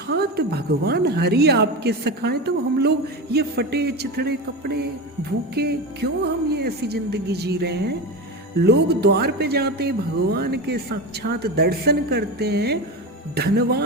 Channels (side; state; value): both; normal; correlation 0.22